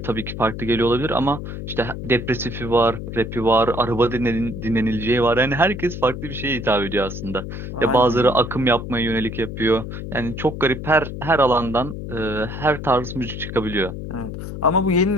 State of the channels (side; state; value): left; noise; hum, 8 dB below the sound